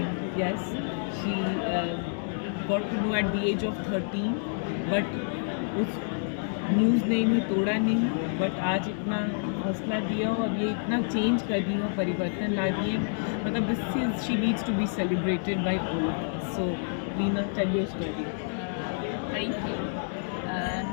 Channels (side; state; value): right; silent; digital silence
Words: yes, she got to know at the age of 13, but उस न्यूज़ ने इन्हें तोड़ा नहीं, बट आज इतना हौसला दिया और ये इतना चेंज कर रही हो, परिवर्तन ला रही है। मतलब this is, she needs to be celebrated by all of us. So Leena, tell your story. Thank you.